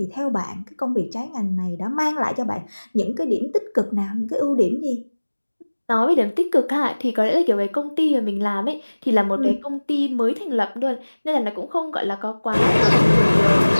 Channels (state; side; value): inverted; both; correlation -1.00